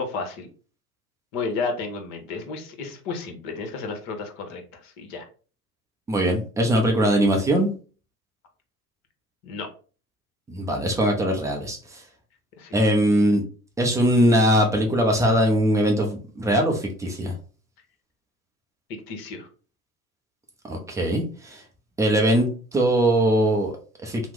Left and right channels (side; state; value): both; normal; correlation 0.55